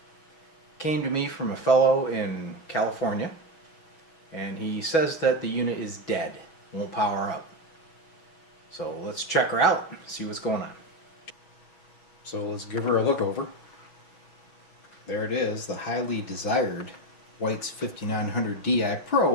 Came to me from a fellow in California, and he says that the unit is dead, won't power up. So let's check her out, see what's going on. So let's give her a look over. There it is, the highly desired White's 5900 Di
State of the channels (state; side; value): late; right; 6.2 ms